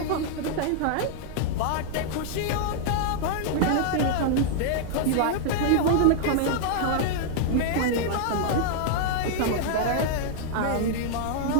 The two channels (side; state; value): both; different; correlation -0.01